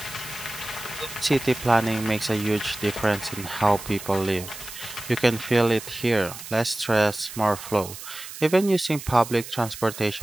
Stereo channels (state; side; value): noise; right; hiss, 12 dB below the sound